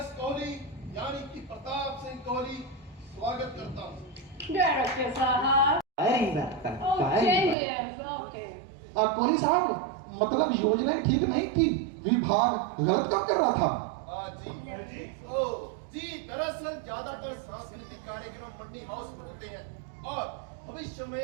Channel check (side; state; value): left; drops out; at 7.6 s